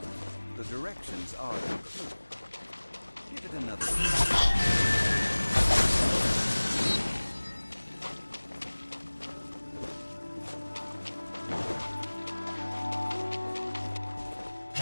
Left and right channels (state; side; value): inverted; both; correlation -1.00